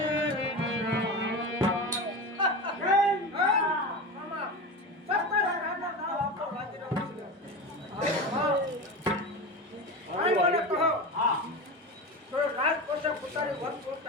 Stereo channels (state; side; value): normal; both; correlation 0.25